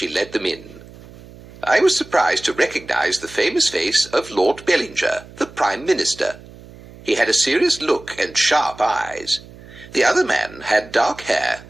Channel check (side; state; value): right; noise; hum, 20 dB below the sound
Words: led them in. I was surprised to recognize the famous face of Lord Bellinger, the Prime Minister. He had a serious look and sharp eyes. The other man had dark hair